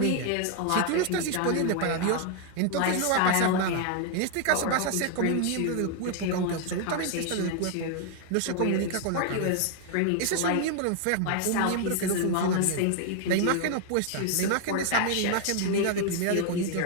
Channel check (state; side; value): different; both; correlation 0.00